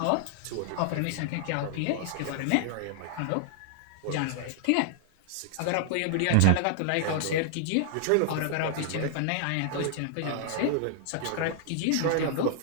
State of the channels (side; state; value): both; different; correlation 0.00